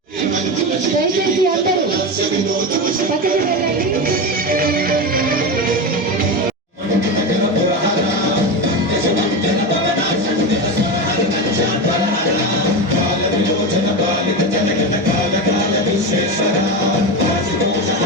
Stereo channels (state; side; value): normal; both; correlation 0.19